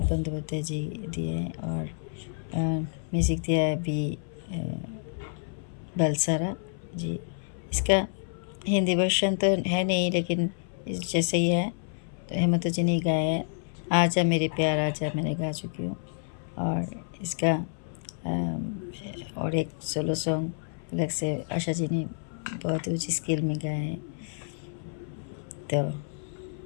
बंदोपाध्याय जी दिए हैं और म्यूज़िक दिया है बी बलसारा जी। इसका हिंदी वर्जन तो है नहीं, लेकिन जैसे ही है तो हेमंत जी ने गाया है। आजा मेरे प्यार आजा मैंने गा चुकी हूँ। और इसका और एक सोलो सॉन्ग अलग से आशा जी ने बहुत ऊँची स्केल में गाया है। तो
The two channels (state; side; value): silent; right; 59 dB below the other